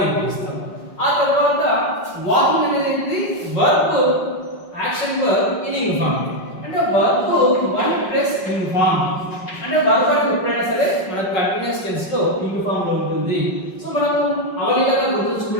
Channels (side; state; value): right; late; 5.4 ms